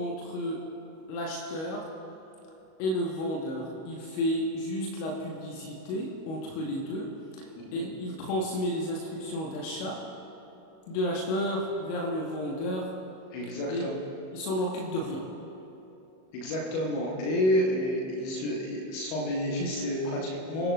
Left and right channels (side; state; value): right; late; 37 ms